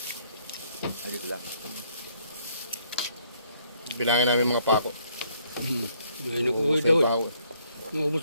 Adi sila. Bilangin namin mga pako. May nag-uwi daw eh. Pako. Naubos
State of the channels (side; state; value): both; inverted; correlation -0.67